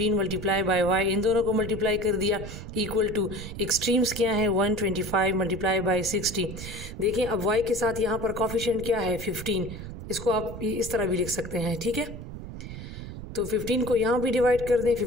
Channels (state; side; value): noise; right; rumble, 10 dB below the sound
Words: मल्टीप्लाई बाय y, इन दोनों को मल्टीप्लाई कर दिया, इक्वल टू एक्सट्रीम्स क्या है, 125 मल्टीप्लाई बाय 60। देखें अब y के साथ यहाँ पर कॉफिशेंट क्या है, 15, इसको आप इस तरह भी लिख सकते हैं, ठीक है। तो 15 को यहाँ भी डिवाइड कर दें,